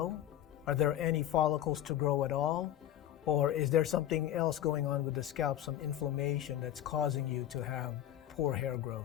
Are there any follicles to grow at all? Or is there something else going on with the scalp, some inflammation that's causing you to have poor hair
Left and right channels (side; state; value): right; quieter; 11.6 dB